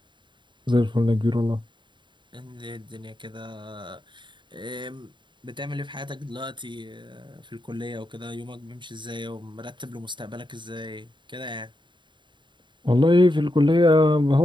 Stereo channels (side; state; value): left; late; 0.23 ms